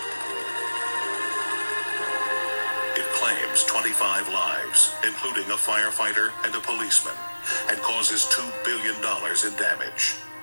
It claims 25 lives, including a firefighter and a policeman, and causes $2 billion in damage.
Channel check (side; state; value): both; inverted; correlation -1.00